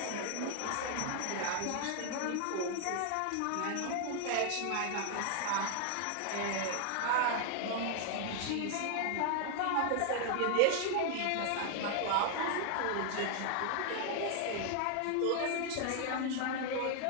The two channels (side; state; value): both; different; correlation 0.00